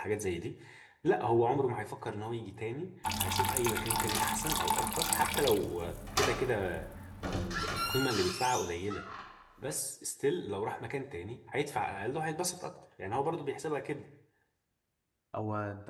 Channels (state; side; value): identical; both; correlation 1.00